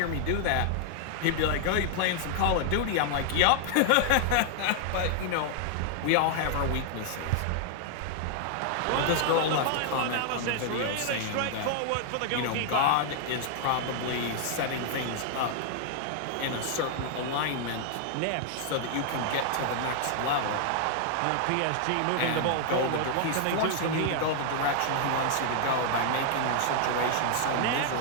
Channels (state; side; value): different; both; correlation -0.01